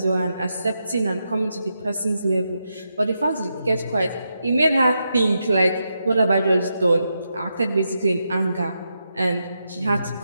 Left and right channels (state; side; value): inverted; both; correlation -0.85